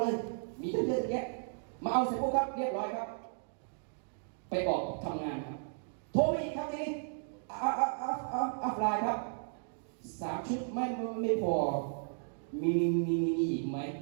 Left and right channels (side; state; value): left; silent; digital silence